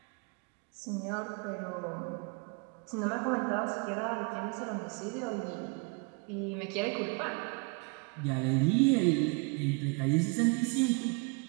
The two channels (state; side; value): quieter; left; 32.1 dB